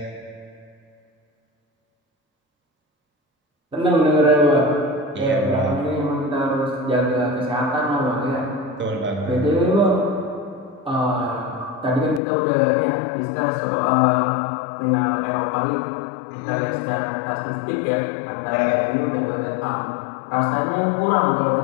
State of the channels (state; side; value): drops out; right; at 12.2 s